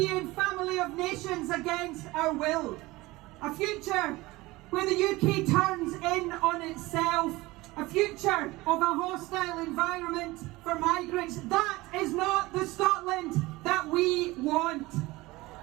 family of nations against our will. A future where the UK turns in on itself. A future of a hostile environment for migrants. That is not the Scotland that we want.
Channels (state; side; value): quieter; left; 20.4 dB